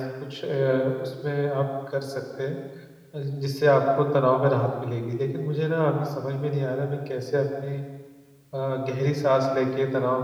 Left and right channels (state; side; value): identical; both; correlation 1.00